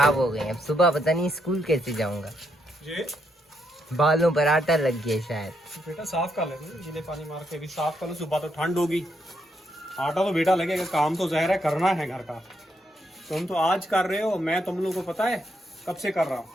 हो गए, अब सुबह पता नहीं स्कूल कैसे जाऊंगा। ये बालों पर आटा लग गया शायद। बेटा साफ कर ले, गीले पानी मार के भी साफ कर लो, सुबह तो ठंड होगी, आटा तो बेटा लगेगा, काम तो ज़ाहिर है करना है घर का। तुम तो आज कर रहे हो, मैं तुम लोगों को पता है कब से कर रहा हूँ।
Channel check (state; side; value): normal; both; correlation 0.78